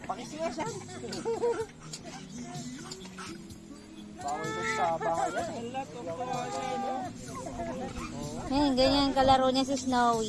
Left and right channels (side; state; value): both; identical; correlation 1.00